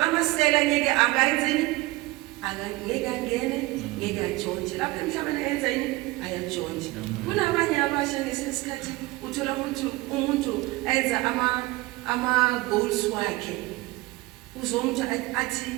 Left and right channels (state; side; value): quieter; left; 20.5 dB